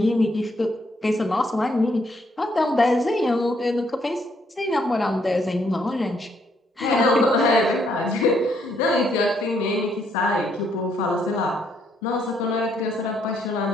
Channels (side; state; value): both; normal; correlation 0.71